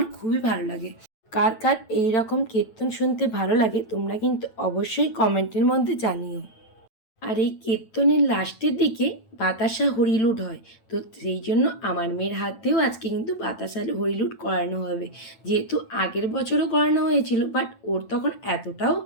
খুবই ভালো লাগে। কার কার এইরকম কীর্তন শুনতে ভালো লাগে তোমরা কিন্তু অবশ্যই কমেন্টের মধ্যে জানিও। আর এই কীর্তনের লাস্টের দিকে বাতাসা হরিলুট হয়। তো সেই জন্য আমার মেয়ের হাত দিয়েও আজকে কিন্তু বাতাসা হরিলুট করানো হবে। যেহেতু আগের বছরও করানো হয়েছিল, বাট ওর তখন এতটাও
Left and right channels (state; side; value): late; right; 9.0 ms